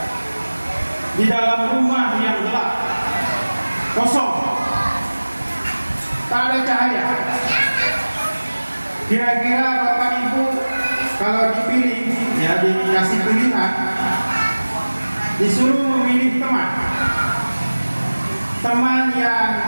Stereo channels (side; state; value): both; inverted; correlation -1.00